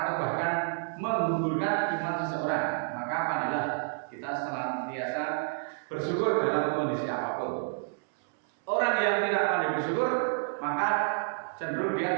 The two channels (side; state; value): left; silent; 58 dB below the other